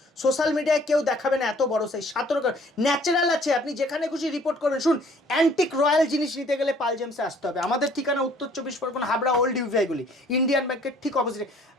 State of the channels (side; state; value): both; normal; correlation 0.57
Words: সোশ্যাল মিডিয়ায় কেউ দেখাবে না, এত বড় সাইজ, 17 ক্যারেট ন্যাচারাল আছে, আপনি যেখানে খুশি রিপোর্ট করবেন। শুন, অ্যান্টিক রয়্যাল জিনিস নিতে গেলে পাল জেমসে আসতে হবে। আমাদের ঠিকানা উত্তর 24 পরগনা, হাবড়া ওল্ড ইউভিআইগুলি, ইন্ডিয়ান ব্যাংকের ঠিক অপোজিটে,